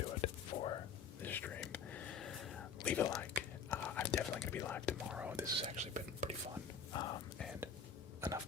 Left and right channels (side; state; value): right; quieter; 6.0 dB